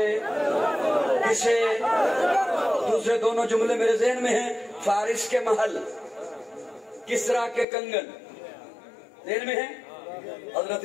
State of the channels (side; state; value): right; drops out; at 7.7 s